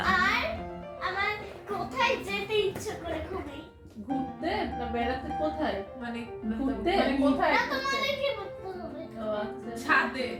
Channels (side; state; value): both; identical; correlation 1.00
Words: আর আমার কোথায় যেতে ইচ্ছে করে খুবই? ঘুরতে না বেড়াতে? কোথায় মানে ঘুরতে? মানে কোথায়? না, তোমাদেরকে বলতে হবে। ও আচ্ছা। ছাদে।